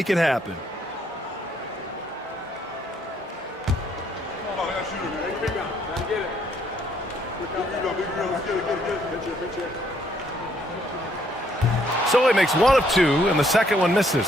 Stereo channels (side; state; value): both; normal; correlation 0.68